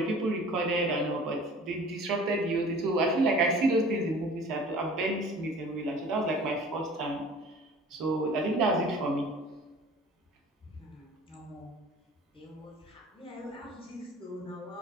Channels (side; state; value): both; normal; correlation 0.46